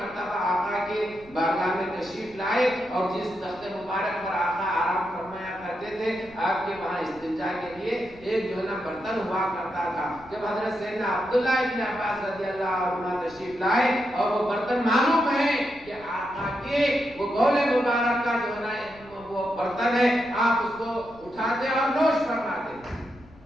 آقا کے بارگاہ میں تشریف لائے اور جس تخت مبارک پر آقا آرام فرمایا کرتے تھے، آپ کے وہاں استنجا کے لیے ایک جو ہے نا برتن ہوا کرتا تھا۔ جب حضرت سیدنا عبداللہ ابن عباس رضی اللہ عنہ تشریف لائے اور وہ برتن معلوم ہے کہ آقا کے وہ بول مبارک کا جو ہے نا وہ برتن ہے، آپ اس کو اٹھاتے اور نوش فرماتے۔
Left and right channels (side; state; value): left; noise; rumble, 24 dB below the sound